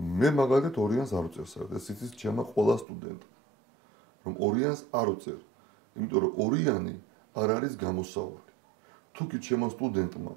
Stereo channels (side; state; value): left; drops out; at 2.9 s